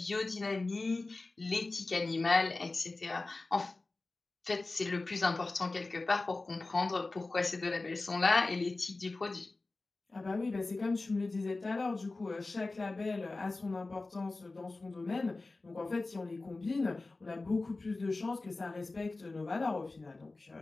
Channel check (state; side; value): quieter; right; 3.3 dB